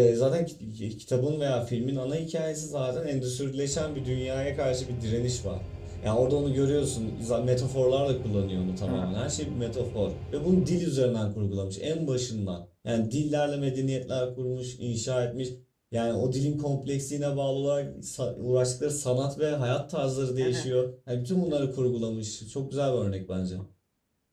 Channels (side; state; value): both; identical; correlation 1.00